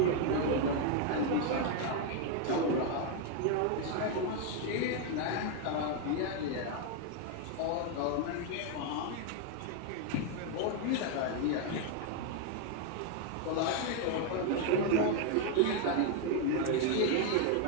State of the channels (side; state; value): both; different; correlation 0.01